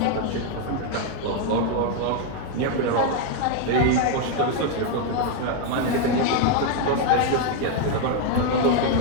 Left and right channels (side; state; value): both; different; correlation 0.01